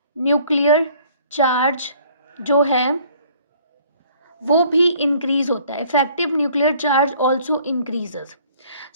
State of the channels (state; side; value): inverted; both; correlation -0.57